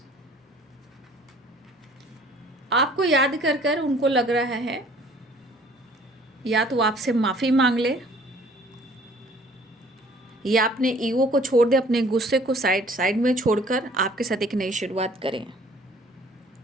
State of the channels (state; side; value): normal; both; correlation 0.55